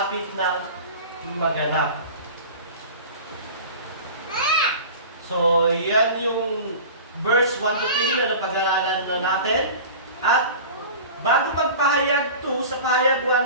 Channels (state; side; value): inverted; both; correlation -0.36